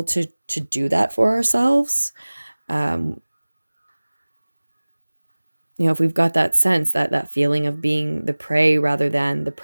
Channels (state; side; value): inverted; both; correlation -1.00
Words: to do that for ourselves, if we've got that sense, that feeling of being the prey rather than the